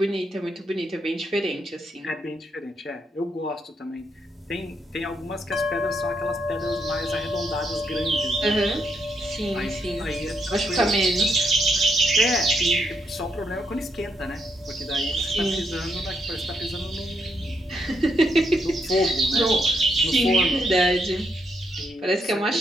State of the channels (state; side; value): normal; both; correlation 0.77